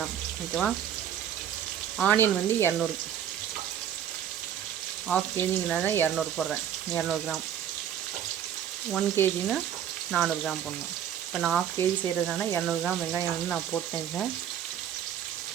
ஓகேவா. ஆனியன் வந்து 200, 1/2 kgனால 200 போடுறேன். 200 கிராம். 1 kgனா 400 கிராம் போடணும். இப்போ நான் 1/2 kg செய்கிறதுனால 200 கிராம் வெங்காயம் வந்து நான் போட்டேன்.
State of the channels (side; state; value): left; quieter; 9.7 dB